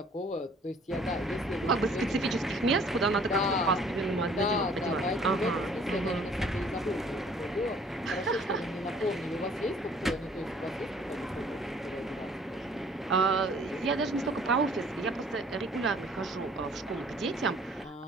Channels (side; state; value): both; normal; correlation 0.56